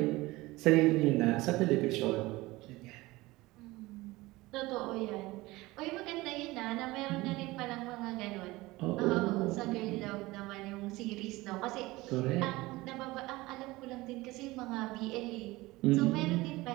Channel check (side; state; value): left; quieter; 20.2 dB